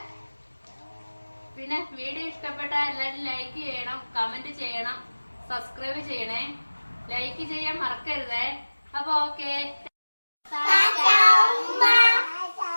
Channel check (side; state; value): both; inverted; correlation -1.00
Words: പിന്നെ വീഡിയോ ഇഷ്ടപ്പെട്ട എല്ലാവരും ലൈക്ക് ചെയ്യണം, കമന്റ് ചെയ്യണം, സബ്സ്ക്രൈബ് ചെയ്യണേ. ലൈക്ക് ചെയ്യാൻ മറക്കരുതേ. അപ്പൊ ഓക്കെ.